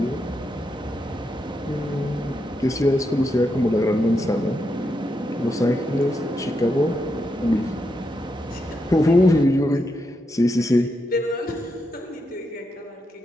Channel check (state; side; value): normal; both; correlation 0.83